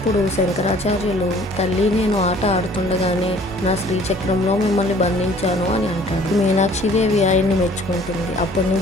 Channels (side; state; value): both; normal; correlation 0.54